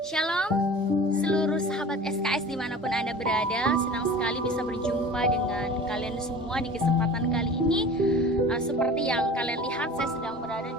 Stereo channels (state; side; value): normal; both; correlation 0.40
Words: Shalom seluruh sahabat SKS dimanapun Anda berada. Senang sekali bisa berjumpa dengan kalian semua di kesempatan kali ini. Seperti yang kalian lihat, saya sedang berada